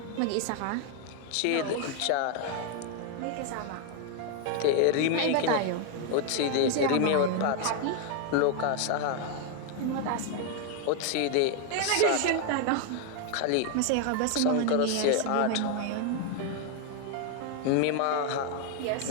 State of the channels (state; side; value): different; both; correlation 0.01